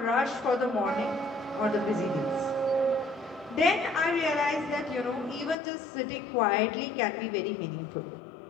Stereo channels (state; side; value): drops out; right; at 5.6 s